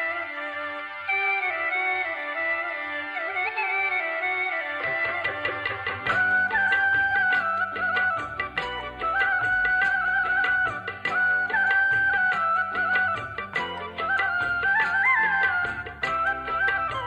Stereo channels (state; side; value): identical; both; correlation 1.00